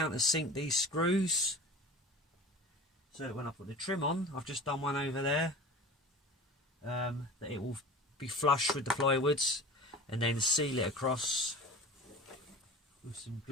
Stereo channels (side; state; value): both; normal; correlation 0.37